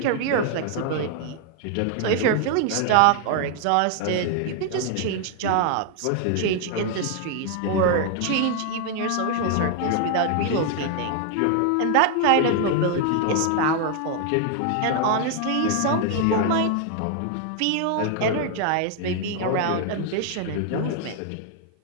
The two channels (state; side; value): different; both; correlation 0.00